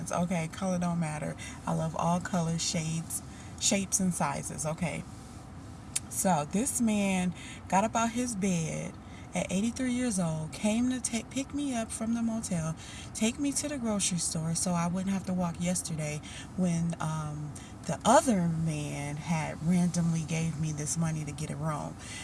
Okay. Color don't matter. I love all colors, shades, shapes, and sizes. Okay. So this man got up out his bed at 83 years old, came to pick me up from the motel, take me to the grocery store so I wouldn't have to walk yesterday when the other man had randomly gave me this money to get a room.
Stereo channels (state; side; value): identical; both; correlation 1.00